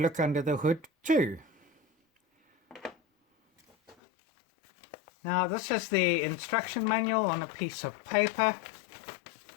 under the hood too. Now this is the instruction manual on a piece of paper.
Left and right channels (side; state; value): right; drops out; at 4.0 s